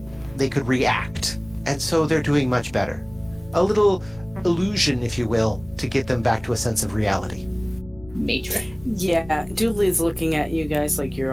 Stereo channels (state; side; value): noise; left; rumble, 20 dB below the sound